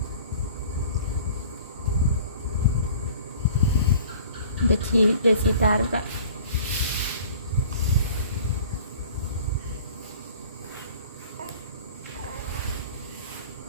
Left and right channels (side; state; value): both; inverted; correlation -0.46